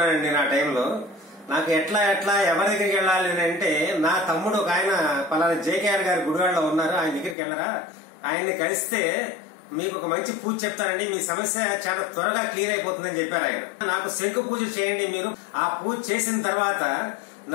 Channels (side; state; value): right; drops out; at 7.4 s